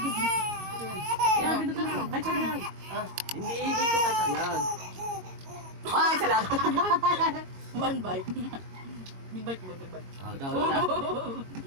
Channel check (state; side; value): late; left; 22 ms